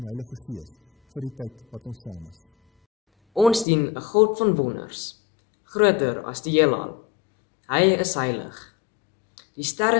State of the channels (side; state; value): right; drops out; at 3.7 s